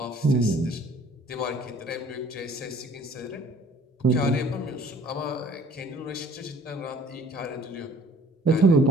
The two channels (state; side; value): normal; both; correlation 0.54